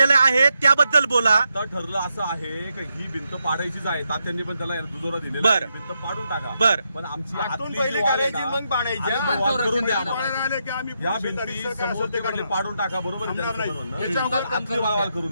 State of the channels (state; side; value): inverted; both; correlation -0.83